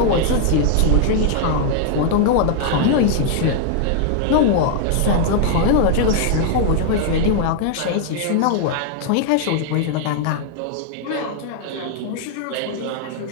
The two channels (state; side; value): different; both; correlation 0.00